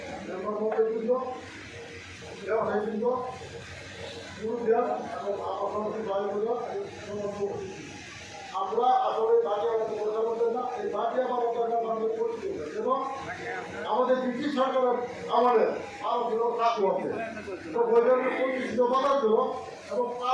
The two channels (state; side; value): identical; both; correlation 1.00